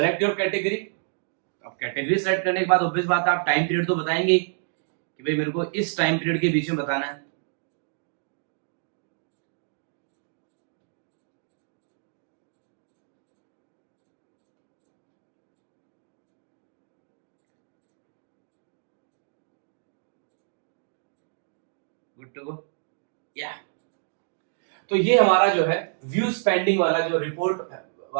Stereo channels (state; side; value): silent; left; digital silence